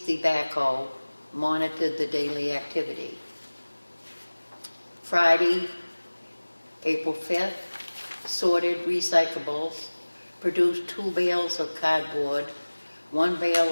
the backhoe, monitored the daily activity. Friday, April 5th, sorted recyclables, produced 2 bales of cardboard, 1 bale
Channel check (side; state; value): both; inverted; correlation -1.00